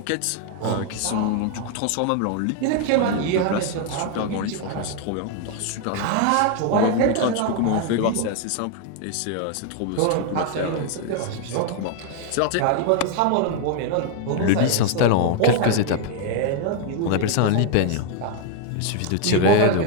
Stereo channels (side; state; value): both; different; correlation 0.00